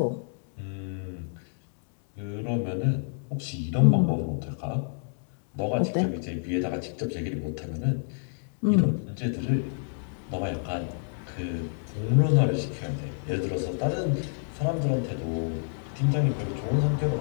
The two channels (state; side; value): silent; right; digital silence